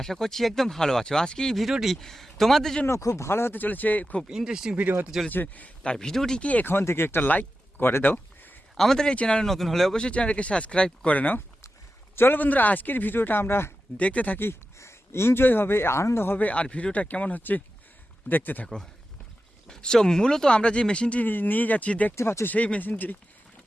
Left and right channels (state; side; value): normal; both; correlation 0.92